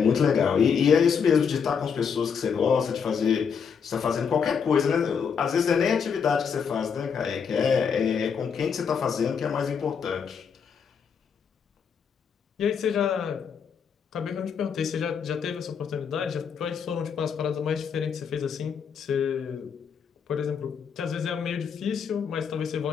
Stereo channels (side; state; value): right; quieter; 6.6 dB